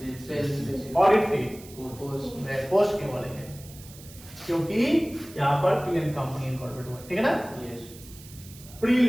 ऑडिट फी, पोस्ट क्यों बोलेंगे? क्योंकि यहाँ पर पीएन कंपनी इनकॉर्पोरेट हुआ, ठीक है ना? Yes.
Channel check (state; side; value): noise; right; hiss, 19 dB below the sound